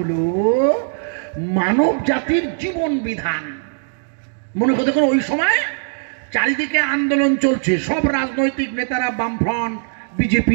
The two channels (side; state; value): left; silent; digital silence